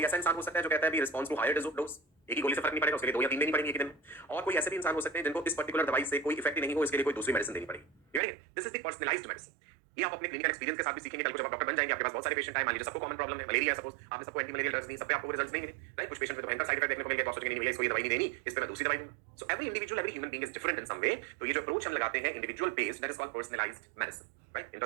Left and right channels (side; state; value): left; drops out; at 8.2 s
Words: ऐसा इंसान हो सकता है जो कहता है भी रिस्पॉन्स टू हायर डोज, एक ही गोली से फर्क नहीं पड़ेगा, उसके लिए 2 या 3 देनी पड़ेगी एक दिन में। और कोई ऐसे भी इंसान हो सकते हैं जिनको इस पर्टिकुलर दवाई से कोई इफेक्ट ही नहीं हो, इसके लिए कोई दूसरी मेडिसिन देनी पड़ेगी। This is the personalised medicine. ये आप अपने क्लिनिकल एक्सपीरियंस के साथ भी सीखेंगे। कल को जब आप डॉक्टर बन जाएंगे, आपके पास बहुत सारे पेशेंट आए, मान लीजिए सबको कॉमन प्रॉब्लम है, मलेरिया सपोज, आपने सबको एंटी मलेरियल ड्रग्स दी, सब पे आपको रिजल्ट्स नहीं मिले, राइट? कुछ पेशेंट में तो भयंकर साइड इफेक्ट देखने को मिल गया, तो सोचेंगे नहीं भैया इसको ये दवाई नहीं देनी, इस पे मैं दूसरी दवाई दूंगा। So every individual, every human being is different in some way. तो ये जो अप्रोच हम लगाते हैं individual based, that is called personalised medicine, right?